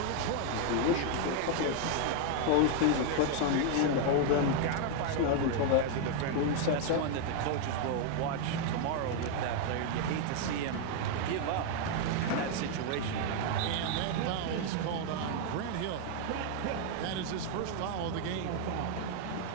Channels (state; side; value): different; both; correlation 0.00